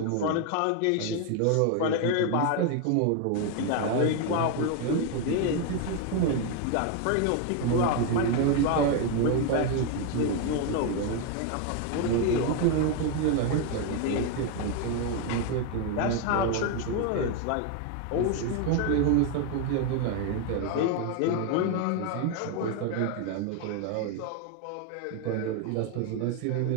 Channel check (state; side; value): different; both; correlation 0.01